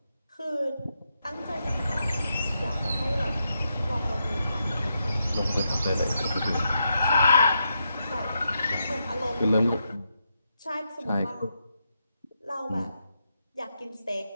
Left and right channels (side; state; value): both; inverted; correlation -0.83